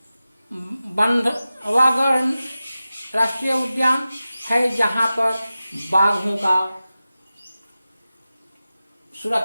बंधवागढ़ राष्ट्रीय उद्यान है, जहां पर बाघों का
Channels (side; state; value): both; inverted; correlation -0.94